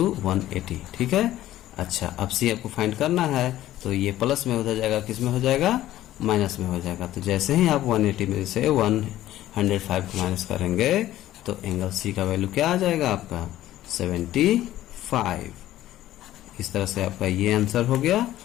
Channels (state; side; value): quieter; right; 14.1 dB